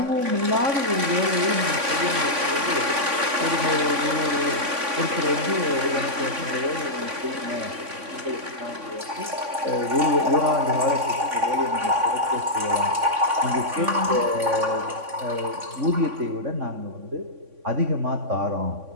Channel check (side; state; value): left; late; 3.5 ms